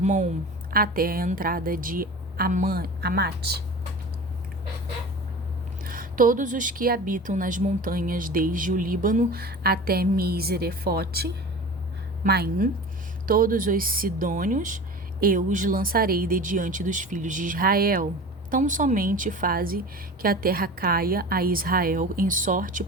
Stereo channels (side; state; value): both; normal; correlation 0.35